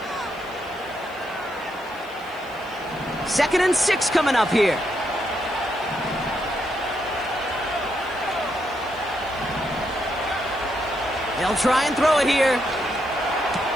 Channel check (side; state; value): left; noise; hiss, 26 dB below the sound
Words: Second and 6 coming up here. They'll try and throw it here.